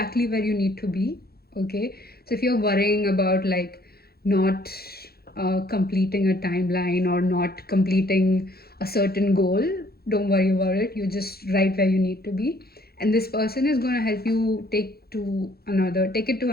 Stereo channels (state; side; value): late; right; 0.45 ms